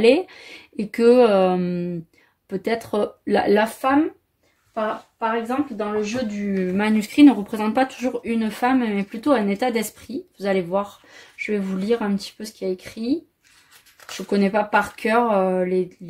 et que peut-être la femme, par exemple, dans le jeu du manuscrit, ne représente pas toujours une femme, mais plutôt un état d'esprit. Vous allez voir, je vais vous lire un petit peu ce qu'il y a écrit. Je ne connais pas par cœur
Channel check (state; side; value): identical; both; correlation 1.00